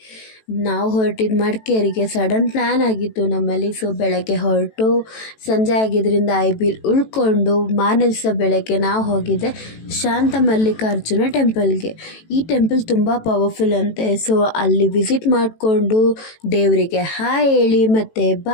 ನಾವು ಹೊರಟಿದ್ದು ಮಡಿಕೇರಿಗೆ. ಸಡನ್ ಪ್ಲ್ಯಾನ್ ಆಗಿತ್ತು ನಮ್ಮಲ್ಲಿ. ಸೊ ಬೆಳಗ್ಗೆ ಹೊರಟು ಸಂಜೆ ಆಗಿದ್ದರಿಂದ ಐಬಿಲ್ ಉಳ್ಕೊಂಡು ಮಾರನೇ ದಿವಸ ಬೆಳಗ್ಗೆ ನಾವು ಹೋಗಿದ್ದೆ ಶಾಂತ ಮಲ್ಲಿಕಾರ್ಜುನ ಟೆಂಪಲ್ಗೆ. ಈ ಟೆಂಪಲ್ ತುಂಬ ಪವರ್ಫುಲ್ ಅಂತೆ. ಸೊ ಅಲ್ಲಿ ವಿಸಿಟ್ ಮಾಡಿಕೊಂಡು ದೇವರಿಗೆ ಹಾಯ್ ಹೇಳಿ ಮತ್ತು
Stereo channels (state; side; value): late; right; 18 ms